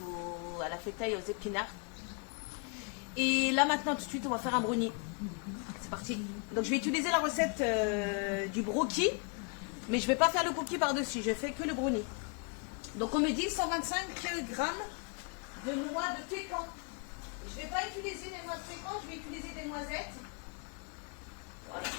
à la fetaille aux épinards. Et là maintenant tout de suite on va faire un brownie. C'est parti. Donc je vais utiliser la recette du brookie. Mais je vais pas faire le cookie par-dessus. Je fais que le brownie. Donc on me dit 125 grammes de noix de pécan. Je ne vais pas utiliser des noix de pécan, je vais utiliser des noisettes. Voilà.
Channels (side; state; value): right; quieter; 36.2 dB